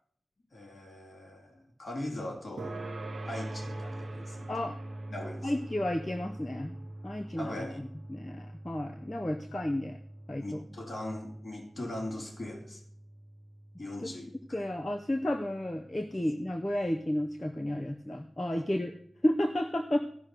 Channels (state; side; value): normal; both; correlation 0.97